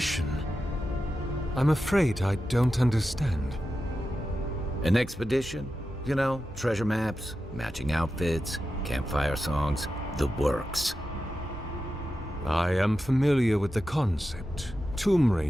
I'm afraid I don't understand. An expedition? You know, treasure maps, matching outfits, campfire songs, the works. I am familiar with the concept, tomb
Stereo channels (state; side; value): normal; both; correlation 0.91